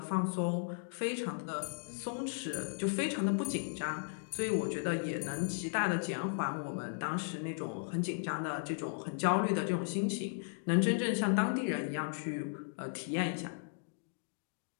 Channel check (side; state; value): right; silent; digital silence